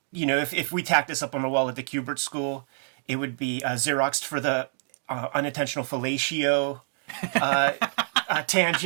if we tacked this up on the wall at the Kubert School, it would be Xeroxed for the unintentional fellatio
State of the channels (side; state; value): left; silent; digital silence